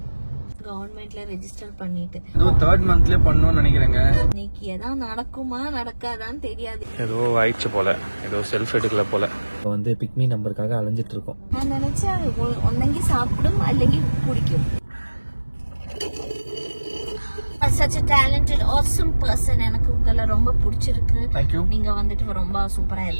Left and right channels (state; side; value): inverted; both; correlation -1.00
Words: கவர்மெண்ட்ல ரெஜிஸ்டர் பண்ணிட்டு ஏதோ 3rd மந்த்லயே பண்ணணும்னு நினைக்கிறேங்க. இன்னைக்கு ஏதாவது நடக்குமா நடக்காதான்னு தெரியாது. ஏதோ ஆயிடுச்சு போல, ஏதோ செல்ஃப் எடுக்கல போல. வந்து பிக்மி நம்பருக்காக அலைஞ்சிட்டு இருக்கோம். நான் நினைச்சேன் ஒன்னங்கி சாப்பிடும் அல்லங்கி குடிக்கும். such a talented awesome person. எனக்கு உங்களை ரொம்ப பிடிச்சிருக்கு. Thank you. நீங்க வந்துட்டு ரொம்ப சூப்பரா